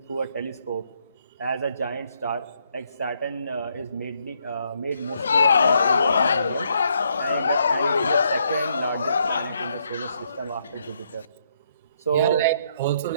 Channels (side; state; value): both; inverted; correlation -0.73